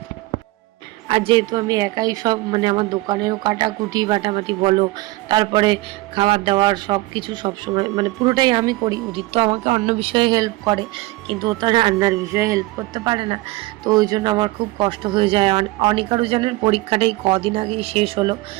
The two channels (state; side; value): quieter; left; 20.3 dB